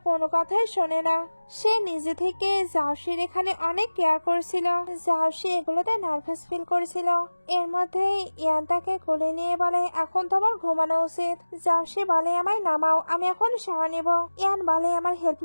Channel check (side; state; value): both; inverted; correlation -1.00